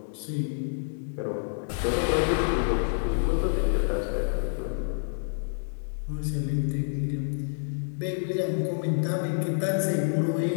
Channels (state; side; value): silent; right; digital silence